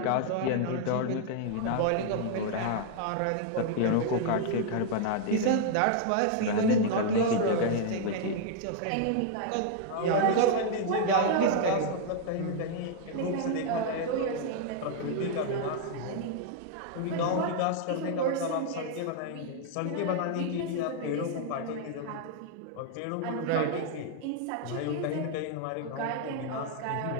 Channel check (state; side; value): different; both; correlation 0.00